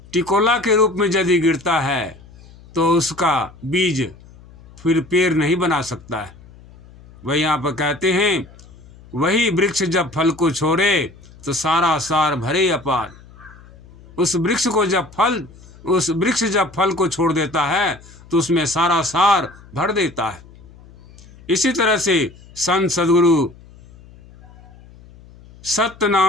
टिकोला के रूप में यदि गिरता है तो उसका बीज फिर पेड़ नहीं बना सकता है। वही यहाँ पर कहते हैं वही वृक्ष जब फल को छोड़े तो सारा सार भरे अपार। उस वृक्ष जब फल को छोड़ देता है तो उसमें सारा सार भर देता है। इसी तरह से संत सद्गुरु सत्य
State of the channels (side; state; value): left; noise; hum, 23 dB below the sound